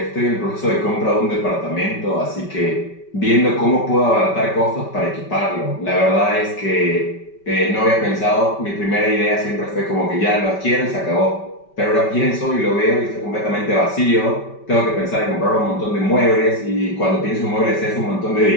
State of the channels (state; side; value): late; right; 5.2 ms